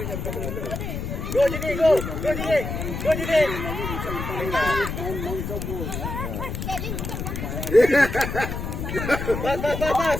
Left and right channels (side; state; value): left; noise; rumble, 5 dB below the sound